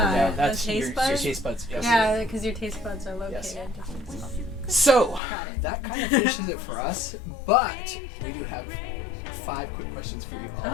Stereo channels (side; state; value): right; drops out; at 5.2 s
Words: one. that? Yeah, The that's taste your buds? taste buds. Yes. Yeah, because your taste buds are located Yes. different. So that kind of finishes it for us, but we do have 5 quick questions for you all.